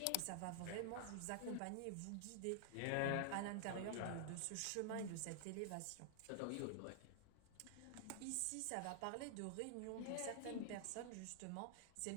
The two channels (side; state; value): both; different; correlation 0.00